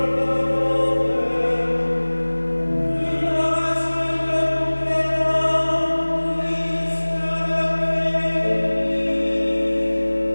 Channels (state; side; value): inverted; both; correlation -1.00